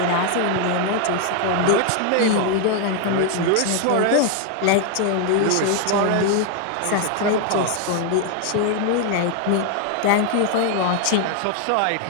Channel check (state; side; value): different; both; correlation 0.01